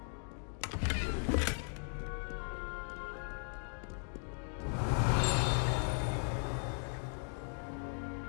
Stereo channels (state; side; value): silent; right; 53 dB below the other